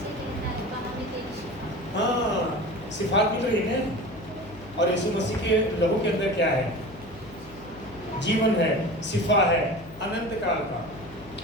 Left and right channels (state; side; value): noise; left; hum, 19 dB below the sound